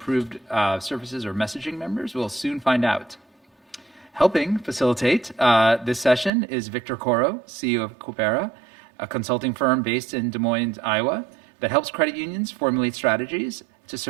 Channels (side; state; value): left; drops out; at 6.3 s